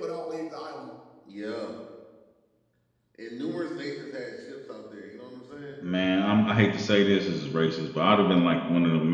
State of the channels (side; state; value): both; identical; correlation 1.00